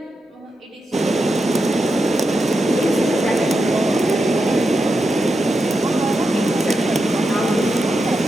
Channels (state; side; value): normal; both; correlation 0.87